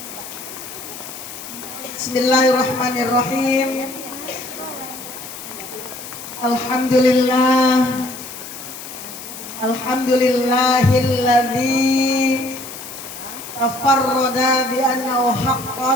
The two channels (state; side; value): noise; left; hiss, 12 dB below the sound